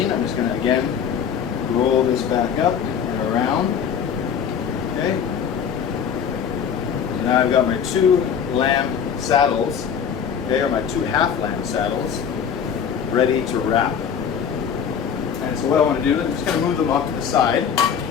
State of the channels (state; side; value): quieter; right; 7.6 dB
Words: I'm just going to again roll this back up and around. Okay? So now I've got my 2 lamb saddles, okay, or my 2 half lamb saddles, ready to wrap. And so what I want to do is I'm just going to move them off to the side.